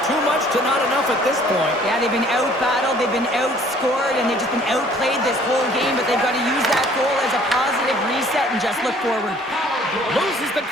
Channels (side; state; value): both; normal; correlation 0.56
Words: too much to not enough at this point. Yeah, they've been out-battled, they've been outscored, and they've just been outplayed this whole game, but they've got to use that goal as a positive reset and just look forward. Loses the